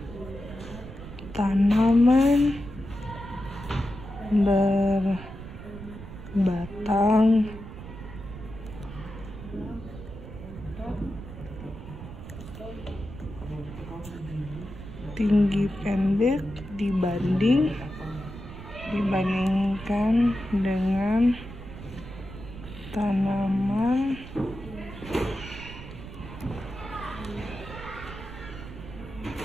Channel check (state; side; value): noise; right; rumble, 13 dB below the sound